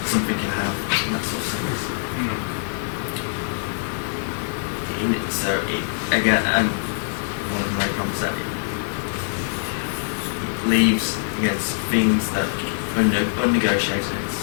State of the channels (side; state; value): right; silent; digital silence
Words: something can have in that sort of sense. Again, and one of the main problems that it leaves against things that are unnegotiated. It